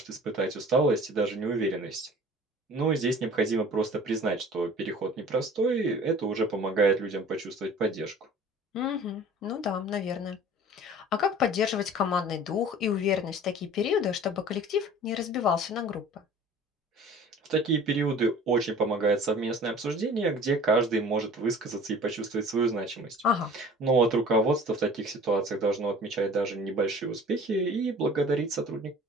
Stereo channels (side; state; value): both; normal; correlation 0.46